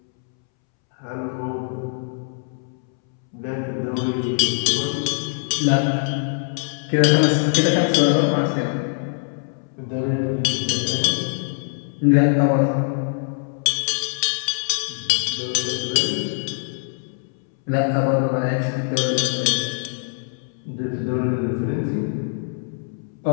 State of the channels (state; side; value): silent; right; 64 dB below the other